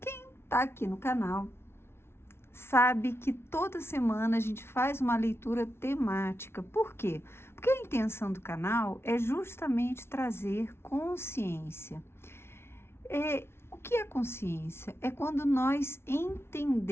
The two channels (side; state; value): right; late; 0.12 ms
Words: está aqui no canal sabe que toda semana a gente faz uma leitura temática. Por quê? Porque a intenção do canal é justamente trazer consciência. O que é consciência? É quando nós